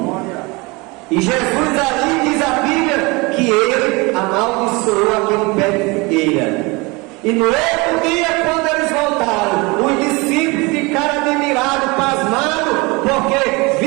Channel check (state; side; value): quieter; left; 25.8 dB